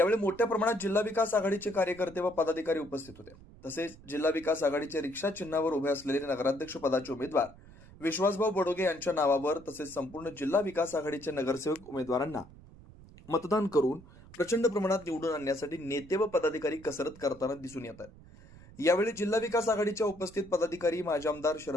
मोठ्या प्रमाणात जिल्हा विकास आघाडीचे कार्यकर्ते व पदाधिकारी उपस्थित होते। तसेच जिल्हा विकास आघाडीचे रिक्षा चिन्हावर उभे असलेले नगराध्यक्ष पदाचे उमेदवार विश्वासभाऊ बडोगे यांच्या नावावर तसेच संपूर्ण जिल्हा विकास आघाडीचे नगरसेवक उमेदवारांना मतदान करून प्रचंड प्रमाणात निवडून आणण्यासाठी नेते व पदाधिकारी कसरत करताना दिसून येत आहेत। यावेळी जिल्हा विकास आघाडीच्या उपस्थित पदाधिकारी माजी आमदार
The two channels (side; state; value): right; noise; rumble, 21 dB below the sound